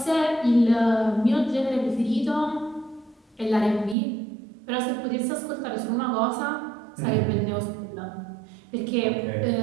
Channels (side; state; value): left; drops out; at 4.0 s